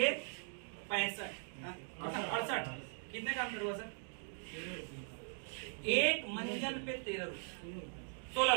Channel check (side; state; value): left; silent; 51 dB below the other